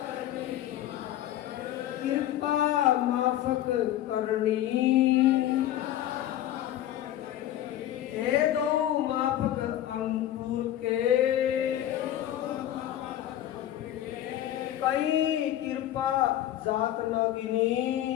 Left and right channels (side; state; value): right; quieter; 12.7 dB